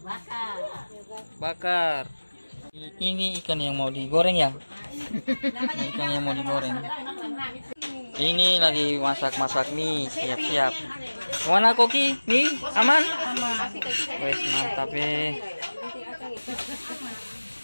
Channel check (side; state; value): both; inverted; correlation -1.00